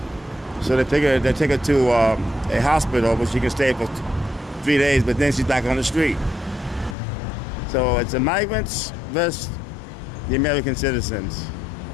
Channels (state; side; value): drops out; right; at 7.0 s